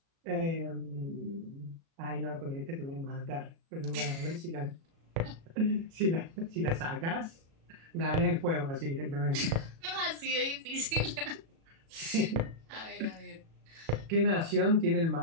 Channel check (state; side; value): late; left; 36 ms